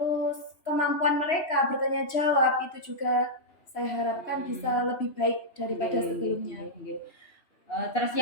kemampuan mereka bertanya jawab itu juga saya harapkan bisa lebih baik daripada sebelumnya. Terus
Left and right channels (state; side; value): late; right; 3.0 ms